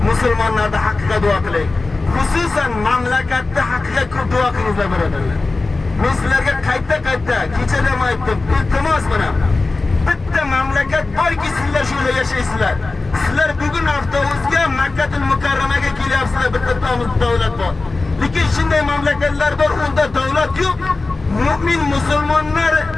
musulmonlarda haqqiga duo qilaylik. Xususan mamlakatda haqqiga ko'p duo qilingizlar birodarlar. Men sizlarga qayta kechada ham aytdim, iltimos bilan bitta mamlakat borki sizlar shu yerda yashaysizlar. Sizlar bugun avtobusga Makkatul Mukarramaga kelyapsizlar, bitta davlat bor. Lekin shunday mamlakatlar bor, unda davlat yo'q. Mu'min musulmonlar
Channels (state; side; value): quieter; right; 3.5 dB